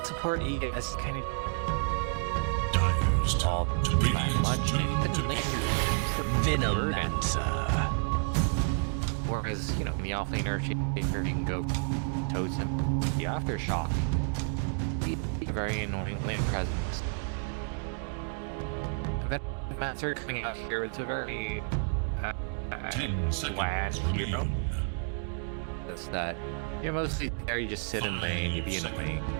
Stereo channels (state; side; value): silent; left; 58 dB below the other